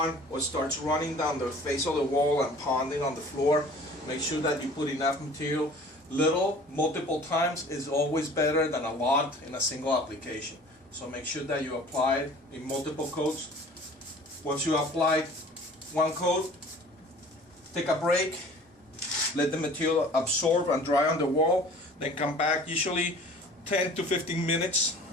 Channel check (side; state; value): both; normal; correlation 0.47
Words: or starts running down the face of the wall and ponding on the floor. Make sure that you put enough material. Little, multiple times is always better than a lot in a single application. So make sure that you apply it in multiple coats. Once you apply 1 coat, take a break, let the material absorb and dry on the wall, then come back. Usually 10 to 15 minutes,